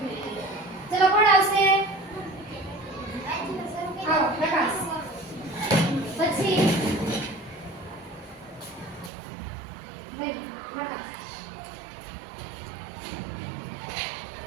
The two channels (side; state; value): left; drops out; at 9.1 s